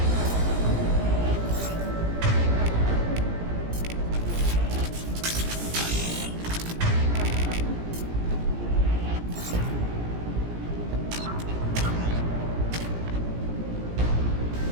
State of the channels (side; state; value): left; late; 17 ms